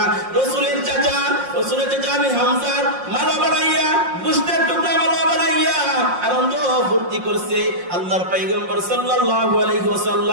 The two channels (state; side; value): late; left; 5.6 ms